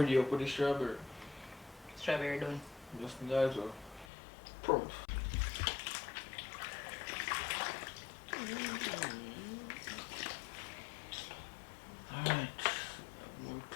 up with the strawberry. Strawberry done. Just that well. Prompt. Alright.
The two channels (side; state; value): right; drops out; at 4.0 s